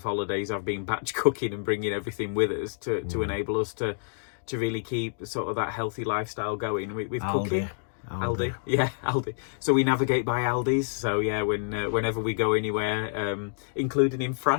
holidays, I've been batch cooking and bringing everything with us to enable us to really keep sort of that healthy lifestyle going with cooking. Aldi. Yeah, Aldi. So we navigate by Aldi's. So yeah, whenever we go anywhere, including in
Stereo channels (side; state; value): right; silent; digital silence